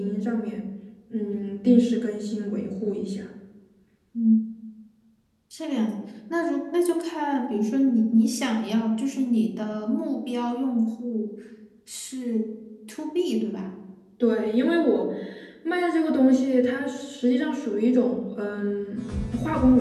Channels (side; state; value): both; identical; correlation 1.00